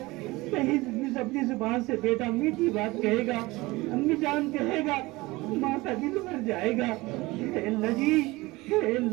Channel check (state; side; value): quieter; left; 21.2 dB